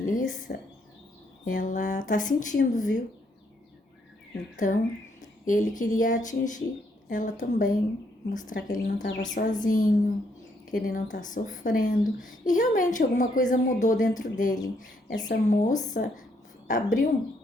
ela tá sentindo, viu? Então, ele queria atingir ela também, mostrar que ele não estava sozinho, que ele não está sofrendo. E realmente alguma coisa mudou dentro dele. Essa moça abriu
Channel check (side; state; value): both; normal; correlation 0.73